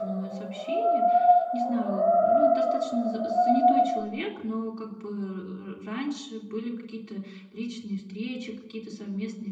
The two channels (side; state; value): both; identical; correlation 1.00